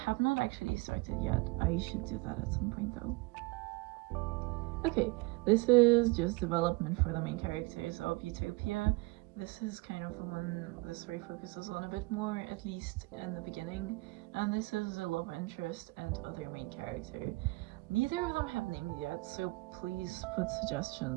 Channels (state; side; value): quieter; left; 24.5 dB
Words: not actually started yet. I should do that at some point though. Okay, this is just development for the main characters of Utopia. This is kind of the one the story focuses on a bit more, at least in the beginning, and this is the love interest and other main character. Neither of them have names yet, so please put